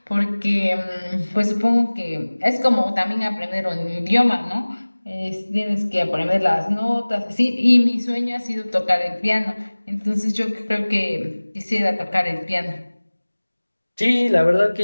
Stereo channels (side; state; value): both; inverted; correlation -1.00